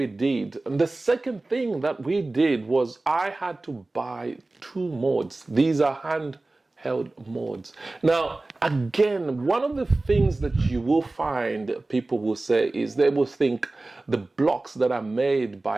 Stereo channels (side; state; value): left; quieter; 3.0 dB